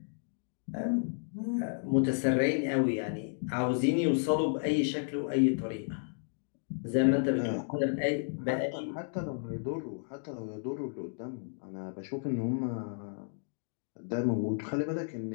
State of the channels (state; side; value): silent; right; digital silence